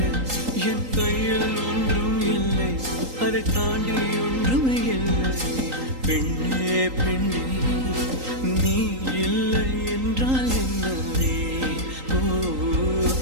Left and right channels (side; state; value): left; late; 3.8 ms